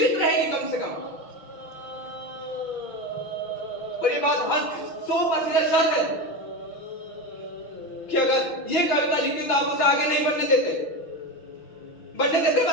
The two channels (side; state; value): right; late; 6.2 ms